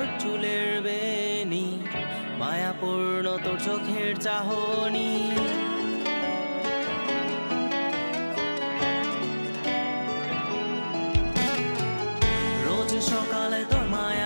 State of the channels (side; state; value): both; inverted; correlation -1.00